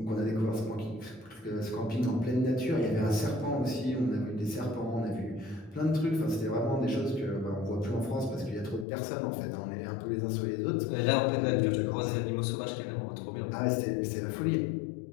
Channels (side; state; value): right; drops out; at 8.8 s